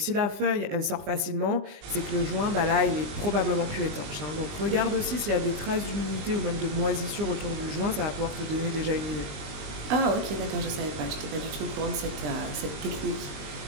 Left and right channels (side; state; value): left; late; 20 ms